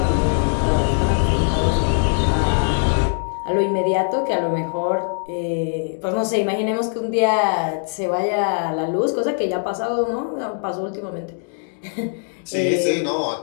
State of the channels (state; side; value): silent; right; 65 dB below the other